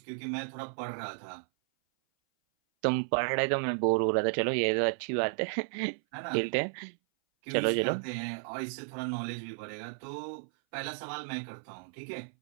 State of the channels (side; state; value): left; silent; 56 dB below the other